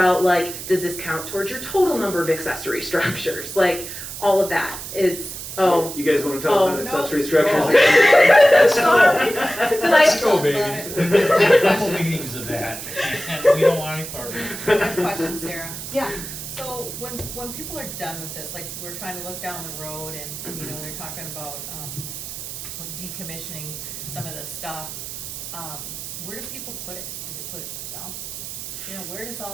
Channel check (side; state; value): right; noise; hiss, 9 dB below the sound